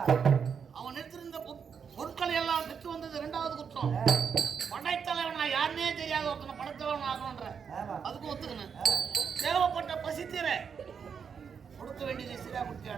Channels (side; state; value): left; quieter; 6.7 dB